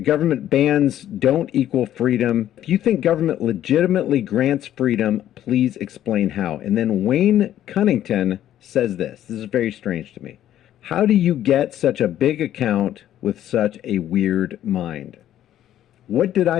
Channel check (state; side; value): quieter; right; 11.9 dB